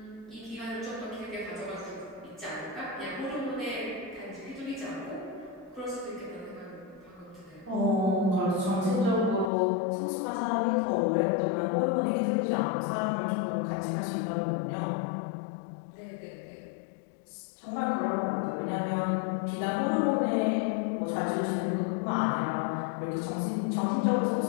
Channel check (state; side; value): drops out; right; at 9.5 s